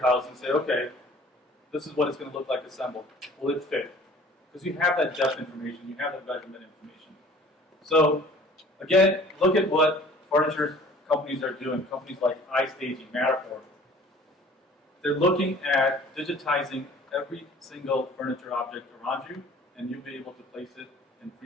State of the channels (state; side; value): normal; both; correlation 0.50